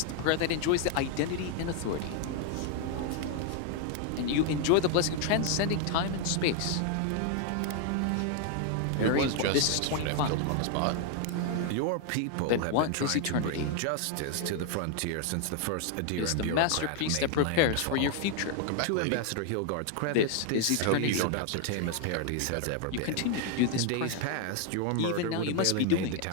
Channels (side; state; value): both; different; correlation 0.00